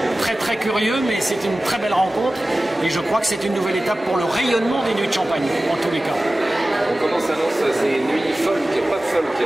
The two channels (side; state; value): both; normal; correlation 0.96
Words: très très curieux, mais c'est une très belle rencontre. Et je crois que c'est une nouvelle étape pour le rayonnement des Nuits de Champagne, en tous les cas. Comment s'annonce ces nuits folk, pop